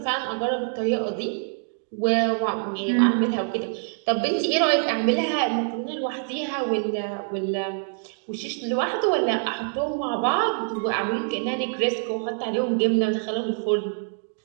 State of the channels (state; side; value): silent; left; digital silence